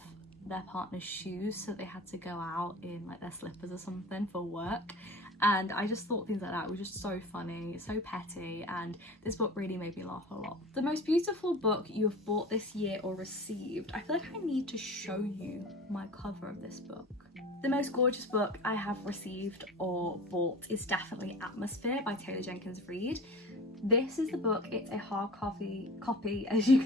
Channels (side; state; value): both; normal; correlation 0.37